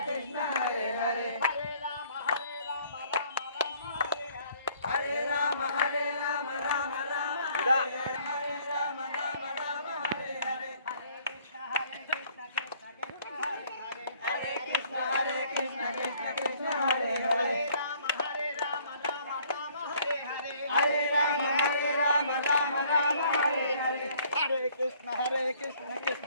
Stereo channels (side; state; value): both; inverted; correlation -0.60